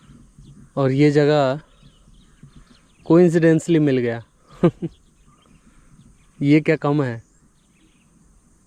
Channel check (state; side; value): identical; both; correlation 1.00